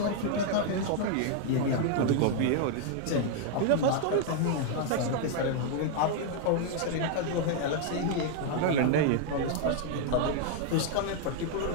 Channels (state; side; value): different; both; correlation 0.00